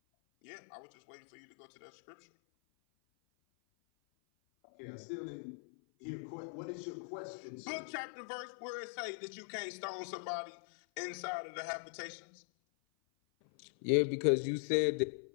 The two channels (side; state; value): right; silent; 51 dB below the other